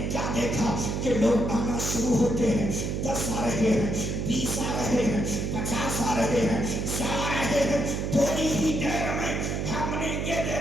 لوگ آنا شروع ہوتے ہیں، 10 آ رہے ہیں، 20 آ رہے ہیں، 50 آ رہے ہیں، 100 آ رہے ہیں، تھوڑی ہی دیر میں ہم نے یہ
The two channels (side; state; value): right; noise; hum, 1 dB below the sound